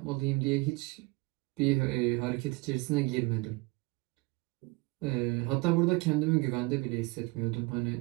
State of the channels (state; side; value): quieter; left; 25.1 dB